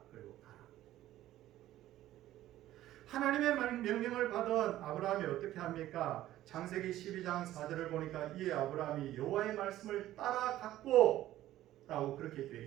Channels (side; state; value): left; quieter; 14.1 dB